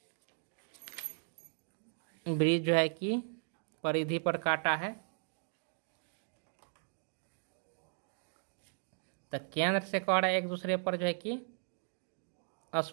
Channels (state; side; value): silent; left; 53 dB below the other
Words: वृत्त जो है कि परिधि पर काटा है, तो केंद्र से कह रहा है एक दूसरे पर जो है कि